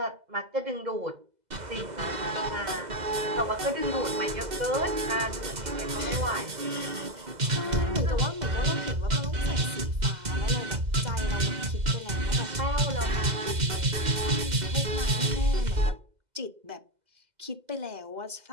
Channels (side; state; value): left; late; 2.0 ms